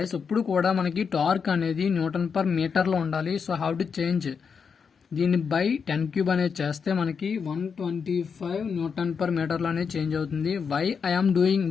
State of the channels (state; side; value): quieter; right; 6.1 dB